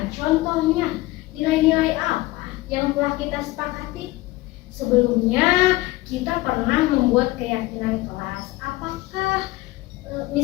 Contohnya, nilai-nilai apa yang telah kita sepakati? Sebelumnya kita pernah membuat keyakinan kelas. Apakah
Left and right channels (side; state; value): right; quieter; 19.1 dB